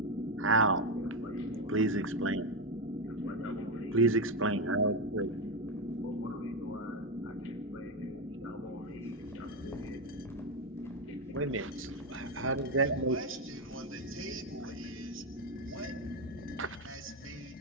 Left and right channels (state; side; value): normal; both; correlation 0.09